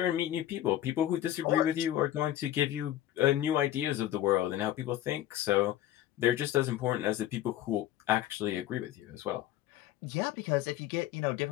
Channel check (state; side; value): quieter; right; 13.0 dB